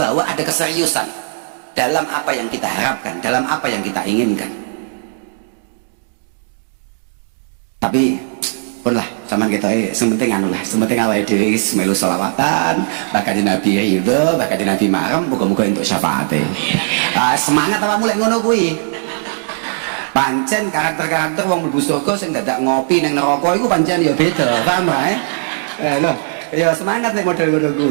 ada keseriusan dalam apa yang kita harapkan, dalam apa yang kita inginkan. Tapi pun lah, zaman kita sementing anu lah, sementing awake dhewe melu selawatan, bakal di Nabi ridho, bakal di Nabi marem, muga-muga entuk syafaate. Semangat apa mulai ngono kuwi. Pancen karakter-karakter wong mlebu surga sing dadak ngopi ning neraka iku pancen ya beda, paham ae? Lho, ya semangat nek model ngono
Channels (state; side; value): silent; left; digital silence